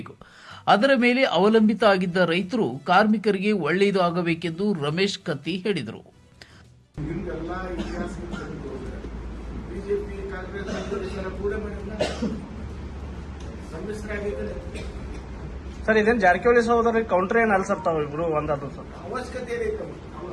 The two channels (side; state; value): both; identical; correlation 1.00